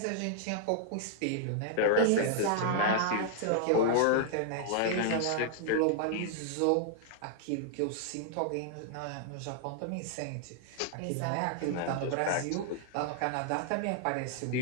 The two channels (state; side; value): different; both; correlation 0.00